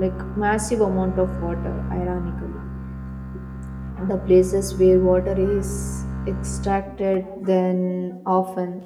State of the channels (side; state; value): both; identical; correlation 1.00